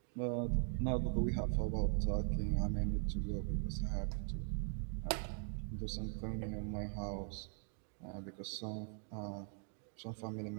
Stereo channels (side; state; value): left; silent; 50 dB below the other